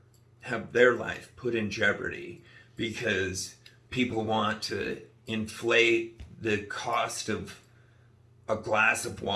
have their life put in jeopardy because people want to inflate the cost of a glass of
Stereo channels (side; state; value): both; identical; correlation 1.00